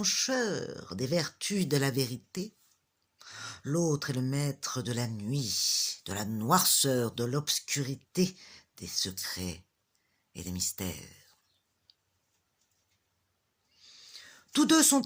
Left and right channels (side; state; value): both; identical; correlation 1.00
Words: des vertus, de la vérité. L'autre est le maître de la nuit, de la noirceur, de l'obscurité, des secrets et des mystères. Tous deux